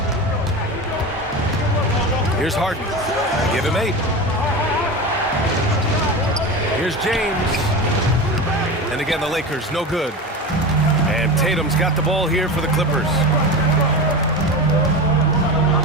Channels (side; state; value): both; normal; correlation 0.26